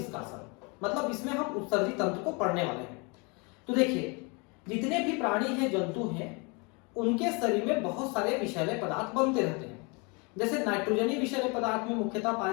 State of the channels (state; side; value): quieter; right; 30.7 dB